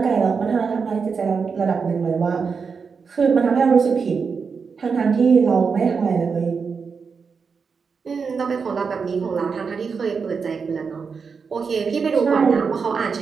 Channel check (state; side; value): quieter; left; 5.5 dB